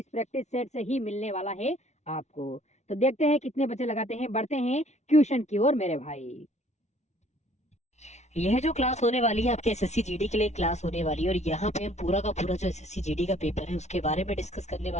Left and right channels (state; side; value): late; right; 0.32 ms